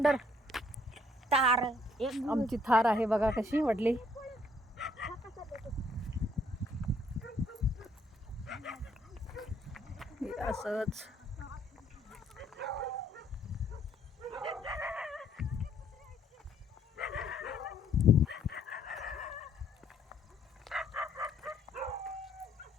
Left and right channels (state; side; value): normal; both; correlation 0.67